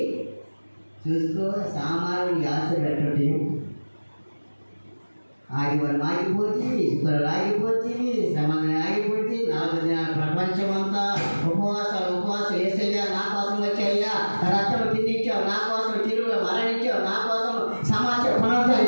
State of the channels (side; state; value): both; inverted; correlation -1.00